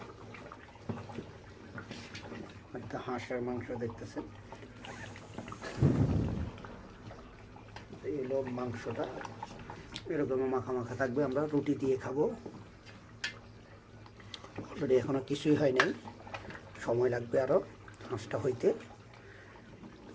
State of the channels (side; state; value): both; identical; correlation 1.00